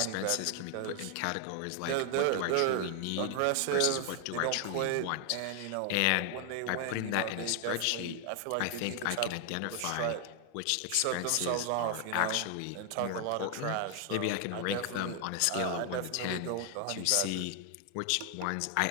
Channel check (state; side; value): different; both; correlation 0.00